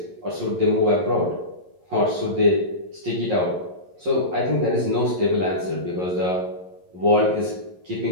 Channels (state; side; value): late; left; 11 ms